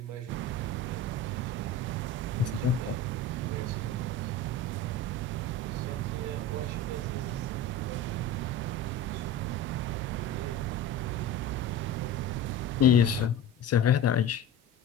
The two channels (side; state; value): both; normal; correlation 0.32